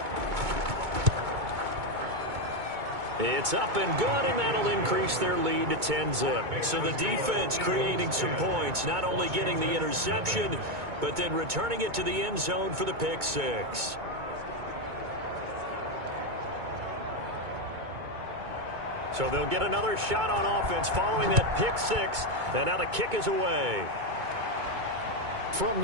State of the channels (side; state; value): left; late; 2.2 ms